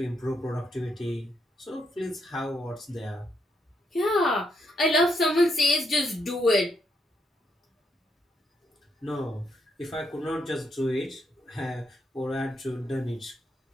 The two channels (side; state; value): both; normal; correlation 0.78